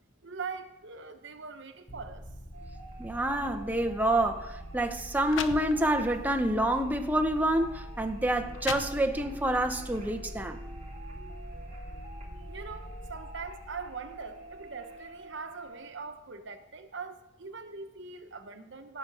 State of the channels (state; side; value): normal; both; correlation 0.67